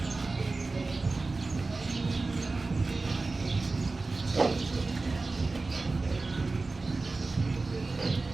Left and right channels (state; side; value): quieter; left; 3.6 dB